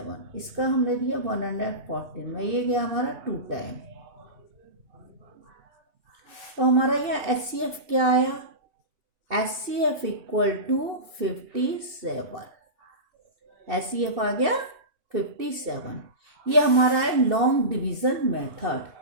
इसका हमने दिया 114 में, ये गया हमारा 2 टाइम। तो हमारा यह एचसीएफ क्या आया, एचसीएफ इक्वल टू 57, एचसीएफ आ गया 57। ये हमारा है लॉन्ग डिवीजन मेथड,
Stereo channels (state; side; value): late; left; 2.6 ms